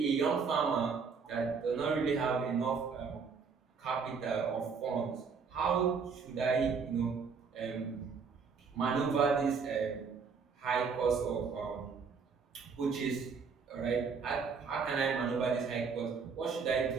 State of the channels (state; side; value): quieter; left; 5.5 dB